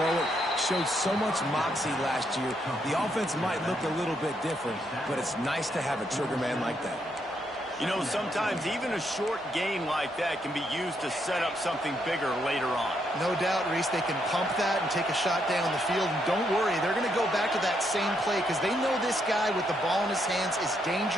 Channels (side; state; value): both; normal; correlation 0.76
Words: it, showed so much moxie last year. The offense might look a little bit different, but it's nice to have a trigger man like that. You know, sometimes even a short gain like that can be used to set up something bigger later on. No doubt, Reese, they can pump that and take a shot down the field. And don't worry, they're going to go back to that same play because they know this guy with the ball in his hands is